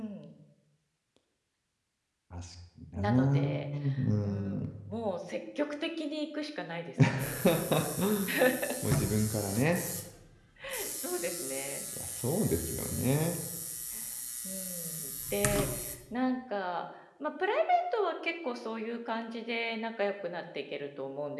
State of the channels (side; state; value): both; identical; correlation 1.00